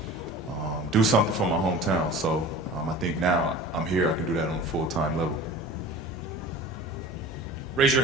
do something for my hometown. So I think now I'm here, I can do that on a full-time level. Raise your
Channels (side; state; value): both; normal; correlation 0.40